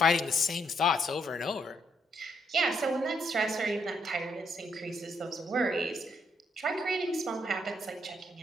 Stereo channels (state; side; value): normal; both; correlation 0.74